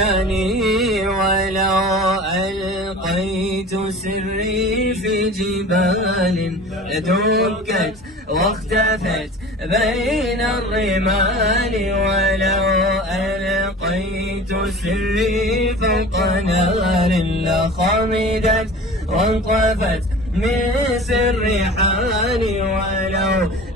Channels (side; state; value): both; normal; correlation 0.39